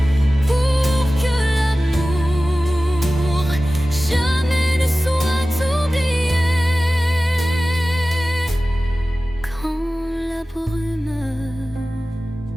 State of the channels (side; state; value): both; normal; correlation 0.96